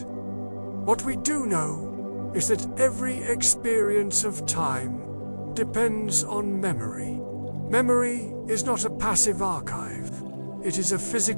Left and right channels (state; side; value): inverted; both; correlation -1.00